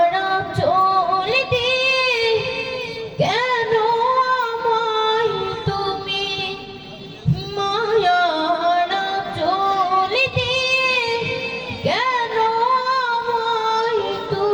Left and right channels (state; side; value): identical; both; correlation 1.00